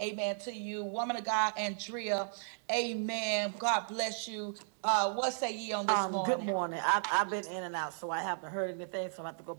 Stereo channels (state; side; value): silent; left; 55 dB below the other